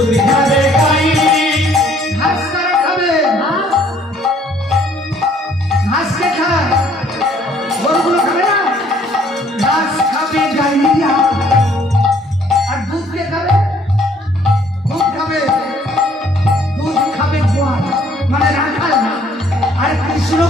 খাবে গাই ঘাস কারা খাবে ঘাস কে খায় গরুগুলো খাবে না ঘাস খাবে গাইয়া আর দুধ কে খাবে দুধ খাবে গোয়াল মানে রাখাল না আর কৃষ্ণ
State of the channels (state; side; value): normal; both; correlation 0.61